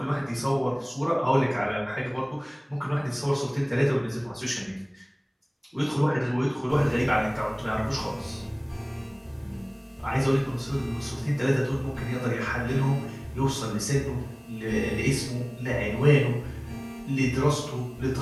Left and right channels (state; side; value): identical; both; correlation 1.00